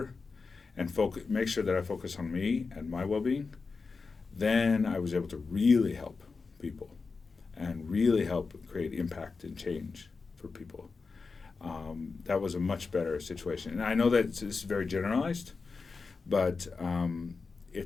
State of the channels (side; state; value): right; quieter; 4.5 dB